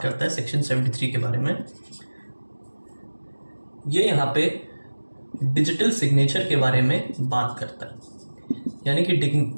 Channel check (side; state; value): both; inverted; correlation -1.00